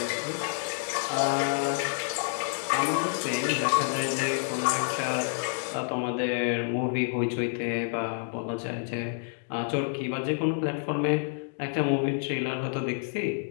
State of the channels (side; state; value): right; silent; 59 dB below the other